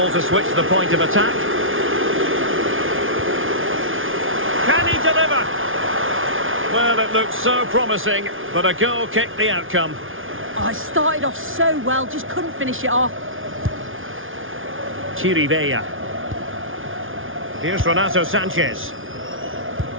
to switch the point of attack. Can he deliver? Well, it looked so promising, but a goal kicked the outcome. Oh, it started off so well, just couldn't finish it off. Chirivella. Here's Renato Sanchez.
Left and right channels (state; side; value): late; left; 0.58 ms